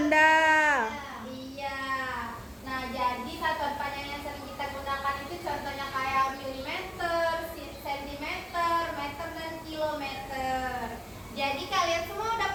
Iya. Nah, jadi satuan panjang yang sering kita gunakan itu contohnya kayak milimeter, sentimeter, meter, dan kilometer. Jadi kalian semua udah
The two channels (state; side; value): identical; both; correlation 1.00